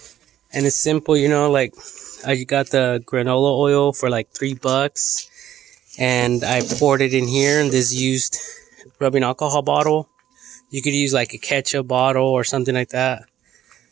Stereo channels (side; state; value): left; quieter; 11.7 dB